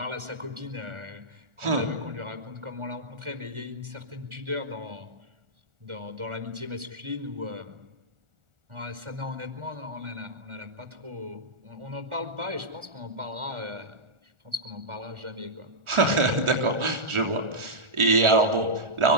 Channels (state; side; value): late; left; 1.4 ms